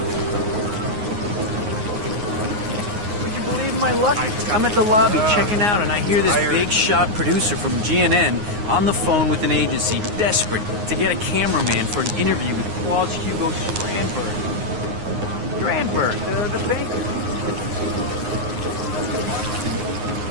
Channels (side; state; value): left; late; 9.6 ms